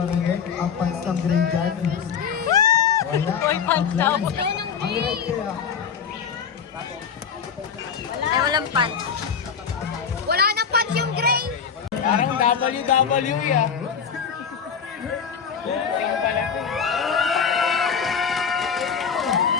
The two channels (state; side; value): quieter; right; 6.8 dB